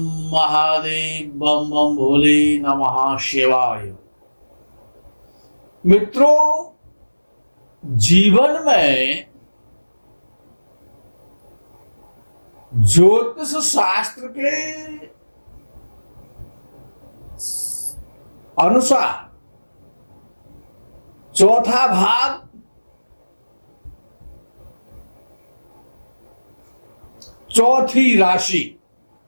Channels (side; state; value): both; inverted; correlation -1.00